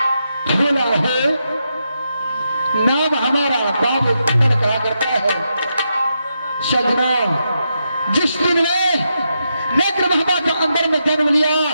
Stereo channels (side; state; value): both; inverted; correlation -0.84